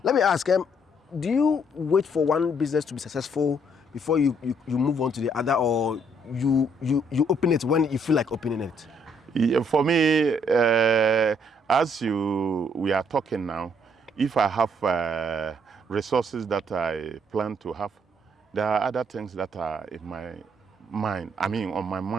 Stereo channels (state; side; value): normal; both; correlation 0.68